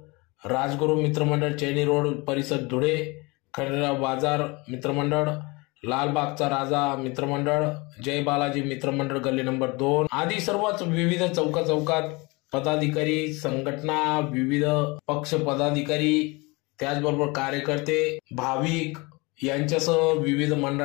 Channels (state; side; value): quieter; right; 25.9 dB